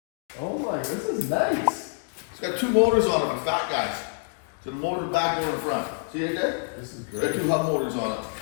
Oh my, this is nice. It's got 2 motors on it, but fat guys. So the motor in the back, motor in the front. See it there? This is It's great. got 2 hub motors on it.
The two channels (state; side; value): silent; right; 60 dB below the other